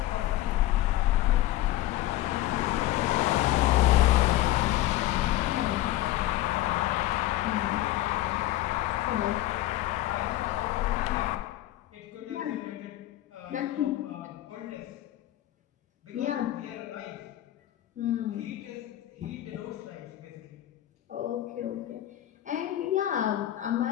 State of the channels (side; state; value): right; quieter; 15.0 dB